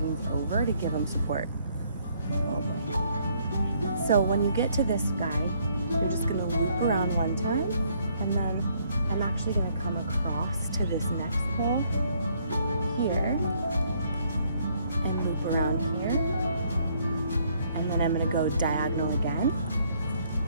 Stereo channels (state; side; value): inverted; both; correlation -0.67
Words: over to give them support. Oh boy. So when you get to this guy, you're just gonna loop around one time, and then I'm actually gonna come across to this next pole here, and loop around here, and then I'm gonna go diagonal again.